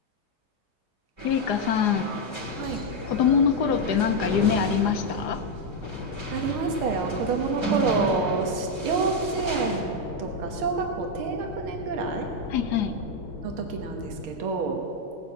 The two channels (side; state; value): both; normal; correlation 0.01